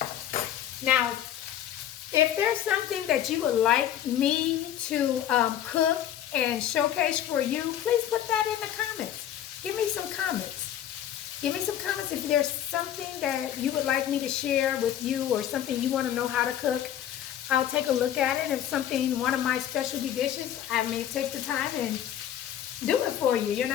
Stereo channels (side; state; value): right; quieter; 10.9 dB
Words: Now, if there's something that you would like me to cook and showcase for you, please put that in the comments. Give me some comments. Give me some comments if there's something that you would like me to share with you or something you want to know how to cook. I'll take a look at it. If something, one of my specialty dishes, I may take the time and do it for you,